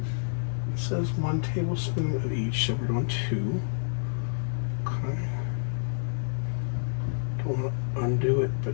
says 1 tablespoon of each, so we're doing 2. Okay. Don't want to undo it, but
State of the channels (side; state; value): right; silent; digital silence